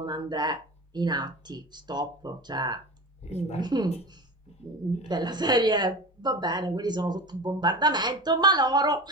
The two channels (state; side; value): normal; both; correlation 0.31